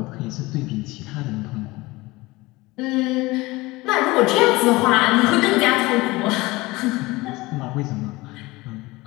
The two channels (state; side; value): quieter; right; 21.2 dB